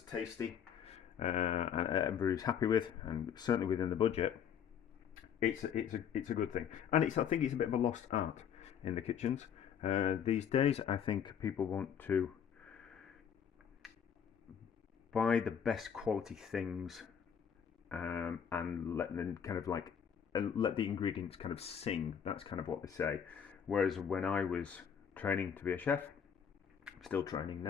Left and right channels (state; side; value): quieter; right; 8.1 dB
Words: tasty and everybody's happy with, and certainly within the budget, it's a good thing. And I think it's a bit of a lost art in the kitchens these days. I think people want to buy the best quality things and let them kind of like let the ingredients kind of sing. That's kind of what they say. Whereas when I was training to be a chef, still training